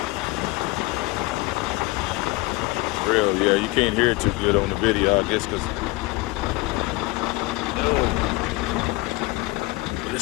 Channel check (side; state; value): right; quieter; 22.0 dB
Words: Real, yeah, you can't hear it too good on the video, I guess, because